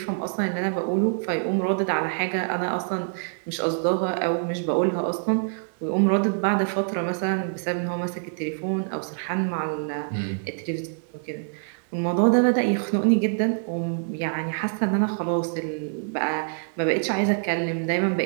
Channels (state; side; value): silent; left; digital silence